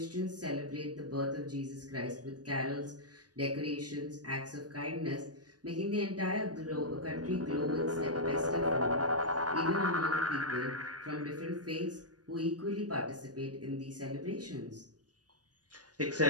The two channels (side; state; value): left; late; 0.68 ms